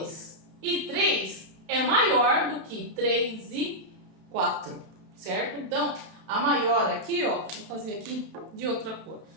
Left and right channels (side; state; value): left; late; 32 ms